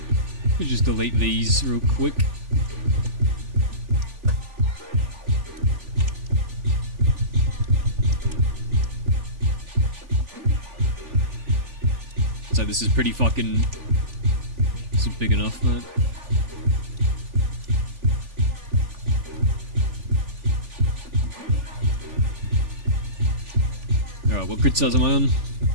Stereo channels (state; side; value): late; left; 3.4 ms